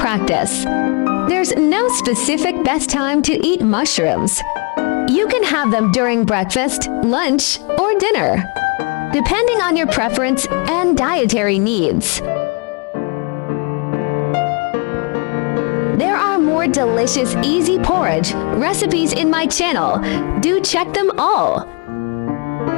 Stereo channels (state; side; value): quieter; right; 33.6 dB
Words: There's no specific best time to eat mushrooms. You can have them during breakfast, lunch, or dinner, depending on your preference and dietary needs. There are more delicious, easy porridge recipes in my channel. Do check them all.